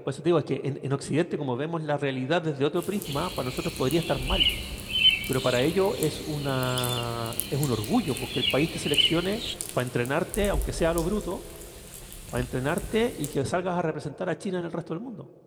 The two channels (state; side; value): identical; both; correlation 1.00